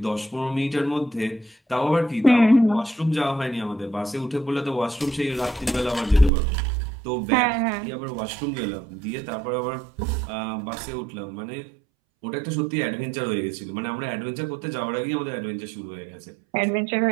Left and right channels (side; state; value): left; drops out; at 6.3 s